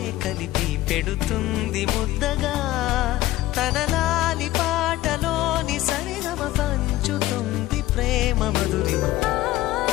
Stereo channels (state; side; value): quieter; right; 16.2 dB